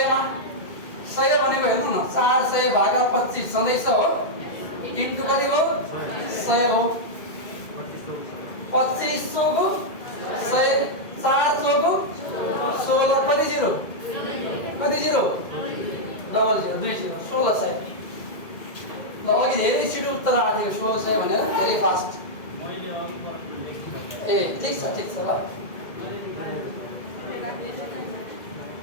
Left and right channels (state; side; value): late; right; 2.2 ms